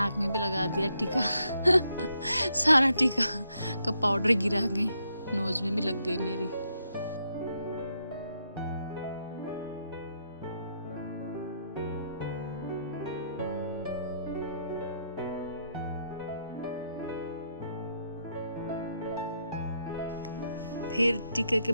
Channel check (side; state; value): both; inverted; correlation -0.77